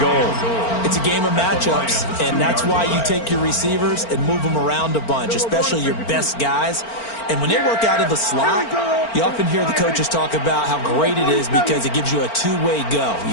It's a game of matchups, and that's why you take your receivers and move them around a bunch, especially your best guys. And when they work out of the slot, you often hear the coaches talk about how great it is because it gives you a two-way go. You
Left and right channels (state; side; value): late; right; 4.4 ms